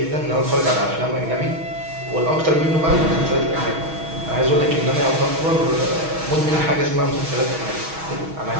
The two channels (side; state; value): left; late; 6.3 ms